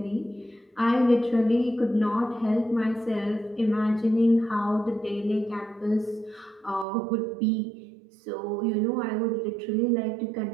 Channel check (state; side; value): drops out; left; at 6.9 s